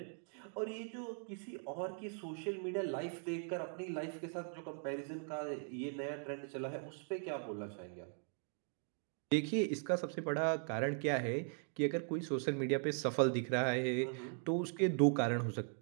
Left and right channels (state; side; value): silent; left; 51 dB below the other